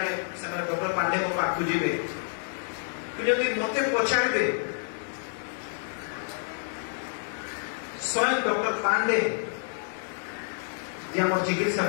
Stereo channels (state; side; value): silent; right; digital silence